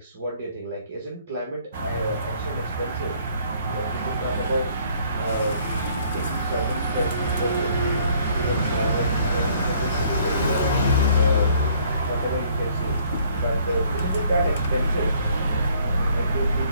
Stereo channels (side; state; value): both; inverted; correlation -0.61